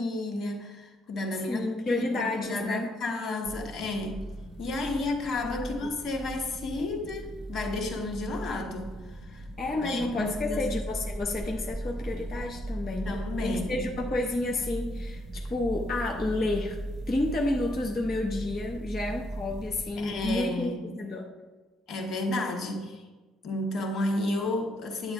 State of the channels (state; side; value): normal; both; correlation 0.74